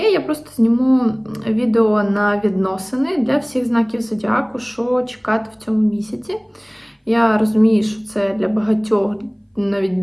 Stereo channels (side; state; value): both; identical; correlation 1.00